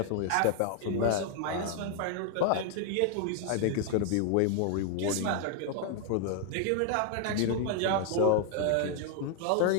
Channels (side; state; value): both; different; correlation 0.00